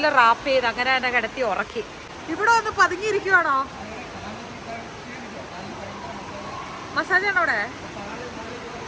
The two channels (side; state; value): both; identical; correlation 1.00